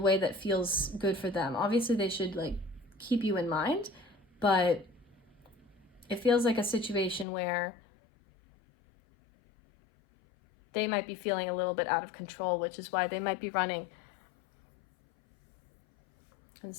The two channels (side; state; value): right; drops out; at 7.2 s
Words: that feels good for them. Obviously, they should like keep you in mind, but it feels like a situation where they might be feeling a little bit out of control, which is why they might be running. And